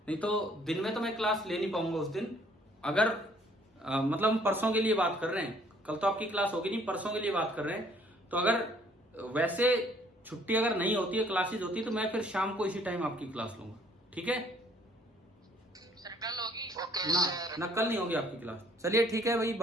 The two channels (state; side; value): normal; both; correlation 0.61